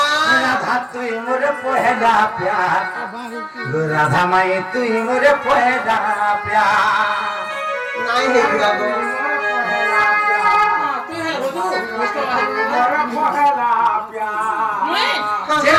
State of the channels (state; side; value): identical; both; correlation 1.00